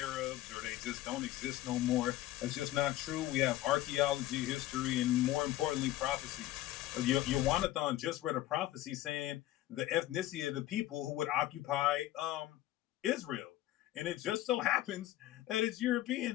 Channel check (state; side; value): quieter; right; 14.9 dB